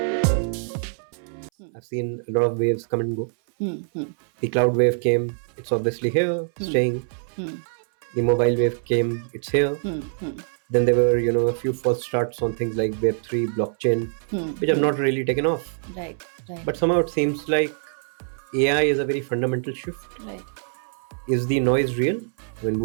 I've seen a lot of waves come and go. The cloud wave came, it's obviously here, staying. The mobile wave came, it's here. Then there were, a few false starts on things like Web3, blockchain, which have not really taken off. Right. But somehow it seems like AI is a very fundamental shift. Right. Is the noise real? I mean,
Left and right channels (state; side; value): silent; left; 61 dB below the other